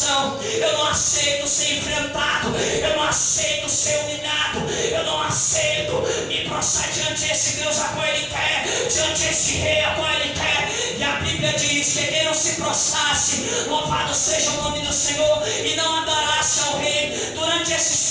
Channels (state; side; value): identical; both; correlation 1.00